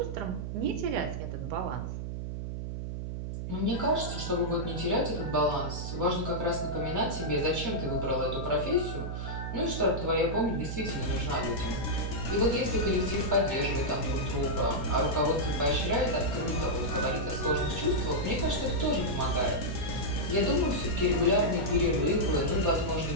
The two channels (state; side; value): noise; right; hum, 5 dB below the sound